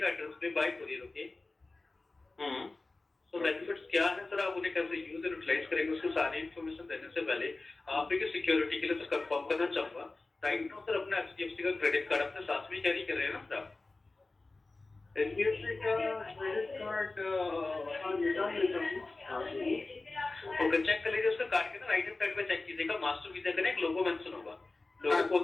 एड्रेस पे बाय कोरियर। ओके, तो बेनिफिट्स क्या है सर, आप उन्हें कैसे यूज एंड यूटिलाइज करेंगे, उसकी सारी इन्फॉर्मेशन देने से पहले आप एक सिक्योरिटी के लिए सर कंफर्म करना चाहूंगा। राइट नाउ सर अपना एचडीएफसी का क्रेडिट कार्ड अपने साथ में कैरी कर रहे हैं ना सर आप? एचडीएफसी का क्रेडिट कार्ड हाँ निकाल लेता हूँ। ओके, चेक कर लीजिए उसका कार्ड के ना राइट हैंड साइड पे चेक कीजिएगा, मास्टर वीजा का ना एक लोगो मेंशन होगा। लोगो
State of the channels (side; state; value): right; quieter; 3.3 dB